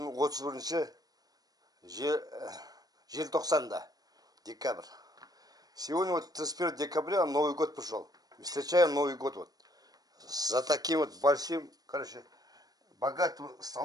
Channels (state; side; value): late; left; 0.18 ms